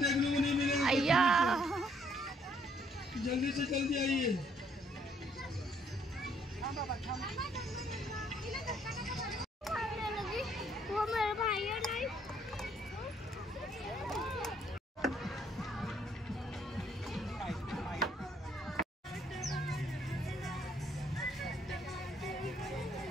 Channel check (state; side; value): normal; both; correlation 0.67